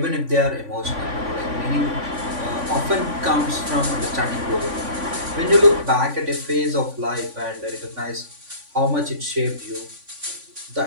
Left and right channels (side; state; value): left; late; 3.5 ms